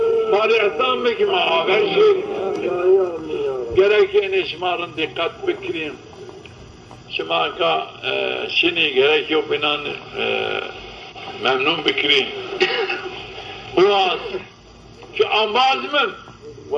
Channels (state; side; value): identical; both; correlation 1.00